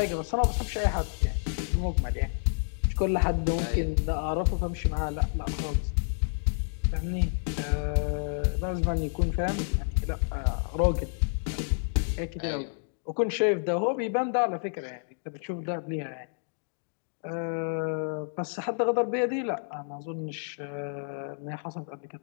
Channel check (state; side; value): silent; right; digital silence